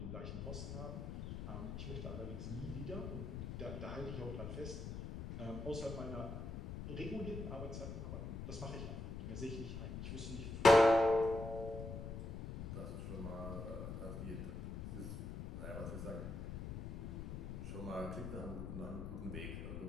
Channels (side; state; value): left; noise; rumble, 6 dB below the sound